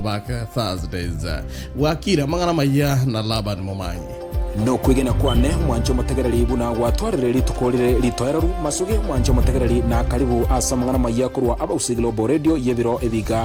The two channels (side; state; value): both; identical; correlation 1.00